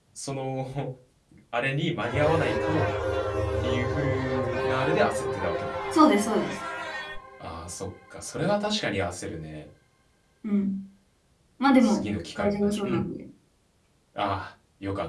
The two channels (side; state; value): both; identical; correlation 1.00